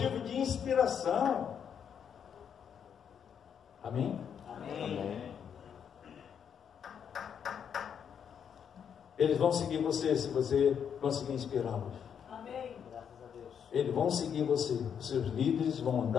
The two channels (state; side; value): quieter; right; 7.9 dB